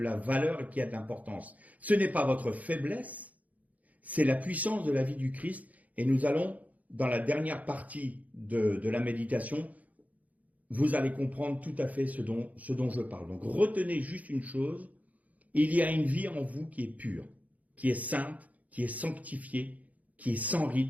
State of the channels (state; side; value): late; left; 0.074 ms